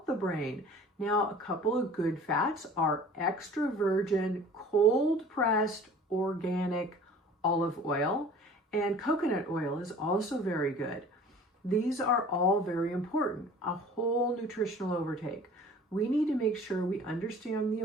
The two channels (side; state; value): both; normal; correlation 0.46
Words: the brain. Now, a couple of good fats are extra virgin, cold pressed, organic olive oil, and coconut oil is also very good. These are all very important. A whole nutritional overtake. We need to make sure we understand the